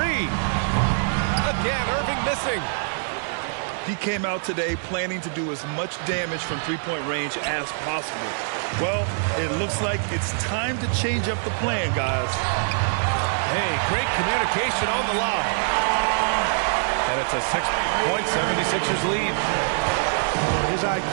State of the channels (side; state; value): left; silent; digital silence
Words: Again, Irving missing. He came out today planning to do as much damage from three-point range as possible. Well, it looks like it's time to change up the plan, guys. Hey, great communication on the lob. And it's a 6-point 76ers lead. His